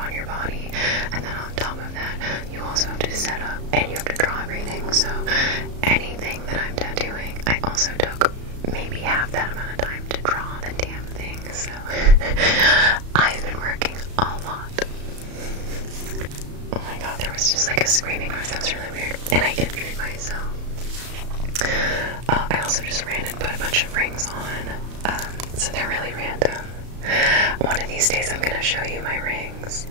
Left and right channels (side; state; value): left; late; 34 ms